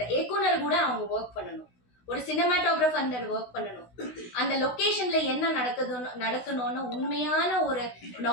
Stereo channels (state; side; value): late; right; 16 ms